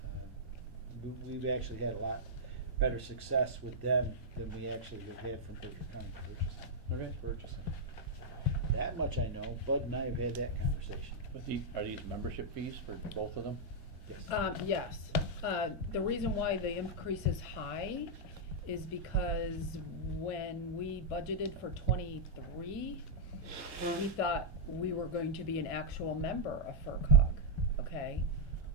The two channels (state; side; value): normal; both; correlation -0.06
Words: We've actually had a lot better success with them than we actually have had from Berkshire County purchasing. That much I know. Bud and I have had that conversation. But are these membership fees for both of them? Yes. Yes. The reason why the increase is high is because when we budgeted for 23, we thought we were going to be an actual member of FERCog, okay?